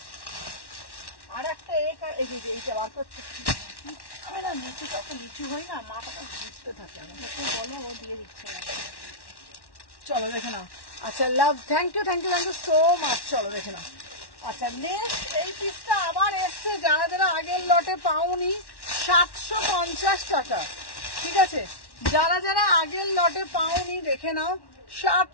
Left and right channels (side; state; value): right; late; 1.1 ms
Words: আর একটা এই যে এইটা বার করতে আমি না নিচু তত নিচু হই না, মাথাটা ঘুরতে থাকে, আমাকে বলো ও দিয়ে দিচ্ছে না। চলো দেখে নাও, আচ্ছা love thank you so much. চলো দেখে নাও, আচ্ছা নেক্সট এই পিসটা আবার এসছে, যারা যারা আগের লটে পাওনি 750 টাকা, ঠিক আছে, যারা যারা আগের লটে পাওনি দেখে নাও